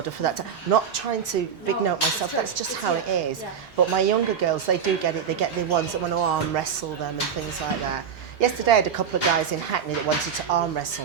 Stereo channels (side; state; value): left; quieter; 7.3 dB